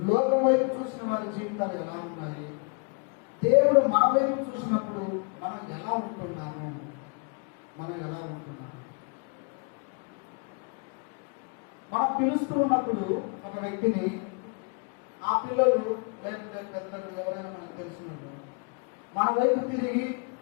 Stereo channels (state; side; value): quieter; right; 34.9 dB